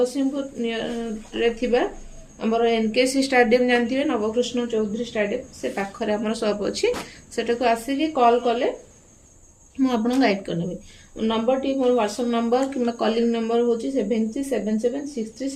आमर एनकेसी स्टाडियम जानते नवकृष्ण चौधरी स्टाडियम से पाखरे आम शॉप अच्छी सेटा आसिक कॉल कले मुझे गाइड करनेबी। नंबर टी मोर व्हाट्सएप नंबर कि कॉलिंग नंबर हूँ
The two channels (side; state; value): both; identical; correlation 1.00